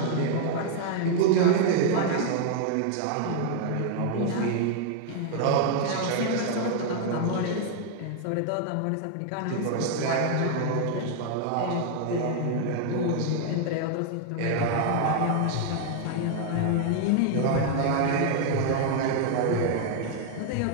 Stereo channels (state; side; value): different; both; correlation 0.00